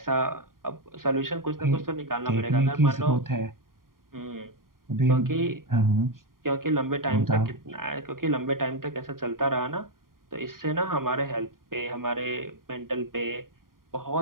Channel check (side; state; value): left; late; 0.91 ms